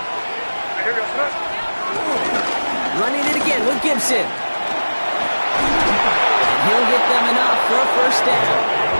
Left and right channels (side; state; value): both; inverted; correlation -1.00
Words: Running it again with Gibson. And he'll get them enough for a first down.